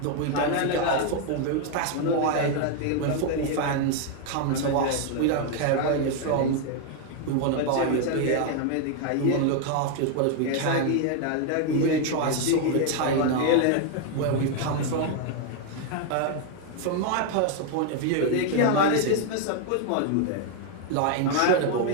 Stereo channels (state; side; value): different; both; correlation 0.01